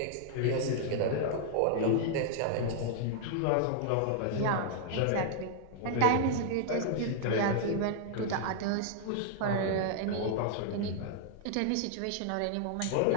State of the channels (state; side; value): different; both; correlation -0.01